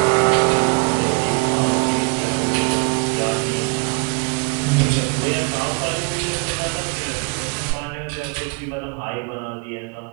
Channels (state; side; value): quieter; left; 32.5 dB